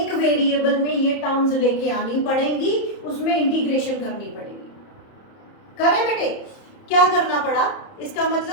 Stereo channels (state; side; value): late; right; 30 ms